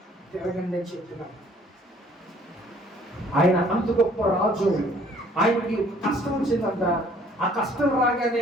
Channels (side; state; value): both; normal; correlation 0.58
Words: తిరగండి అని చెప్తున్నాడు. ఆయన అంత గొప్ప రాజు. ఆయనకి కష్టం వచ్చిందంట. ఆ కష్టం